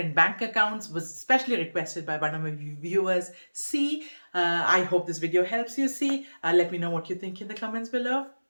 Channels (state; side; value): inverted; both; correlation -1.00